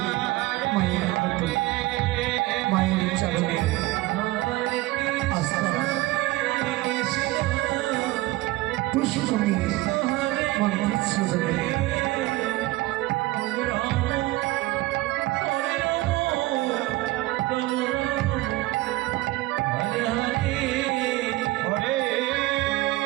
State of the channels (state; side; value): quieter; left; 18.7 dB